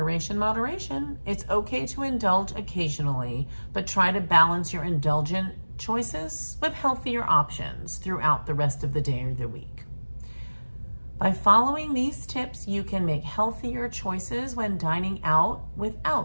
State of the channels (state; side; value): inverted; both; correlation -1.00